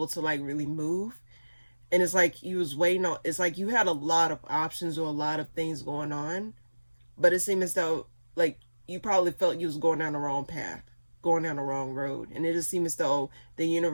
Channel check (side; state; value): both; inverted; correlation -1.00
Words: to like really move. And it's like you was waiting on, it's like you had a lot of options or a lot of things going on. But it seemed as though like you probably felt you was going down the wrong path, going down the wrong road. And it just seemed as though the